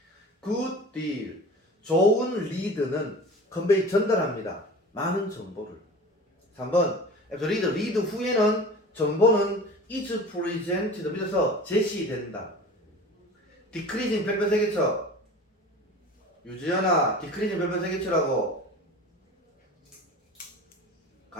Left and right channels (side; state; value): both; normal; correlation 0.38